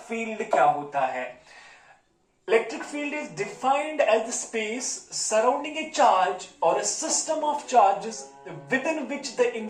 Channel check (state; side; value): identical; both; correlation 1.00